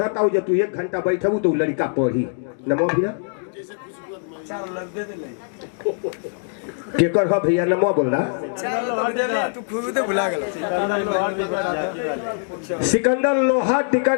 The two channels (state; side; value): silent; right; 64 dB below the other